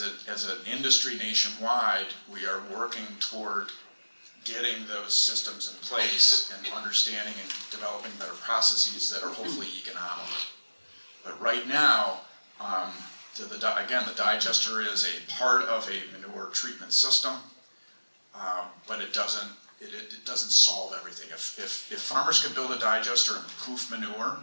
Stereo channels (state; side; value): inverted; both; correlation -1.00